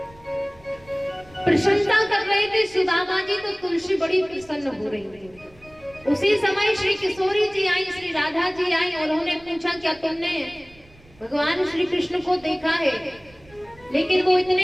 प्रशंसा कर रहे थे सुदामा जी, तो तुलसी बड़ी प्रसन्न हो रही थी। उसी समय श्री किशोरी जी आई, श्री राधा जी आई और उन्होंने पूछा क्या तुमने भगवान श्री कृष्ण को देखा है? लेकिन वो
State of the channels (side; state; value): right; noise; rumble, 26 dB below the sound